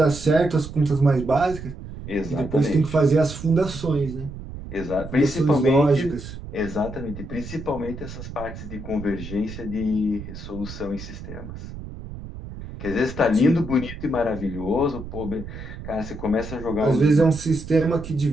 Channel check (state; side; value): noise; right; rumble, 11 dB below the sound